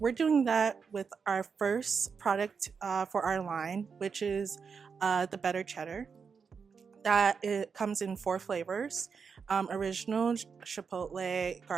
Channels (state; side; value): quieter; left; 5.8 dB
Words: doing that with our first product for our line, which is the Better Cheddar. It comes in 4 flavors, original, chipotle,